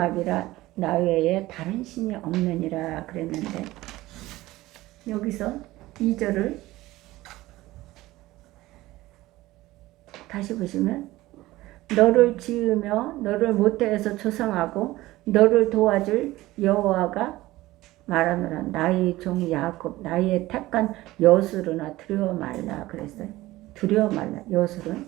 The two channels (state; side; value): quieter; left; 17.7 dB